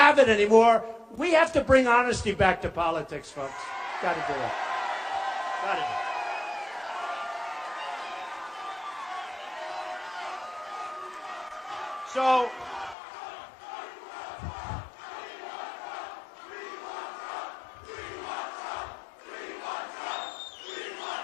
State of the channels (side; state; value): right; drops out; at 13.0 s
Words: it anymore. We have to bring honesty back to politics, folks. Got to do it. Got to do it. So,